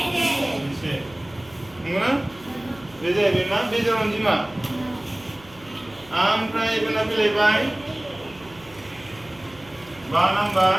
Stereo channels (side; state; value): right; noise; hum, 23 dB below the sound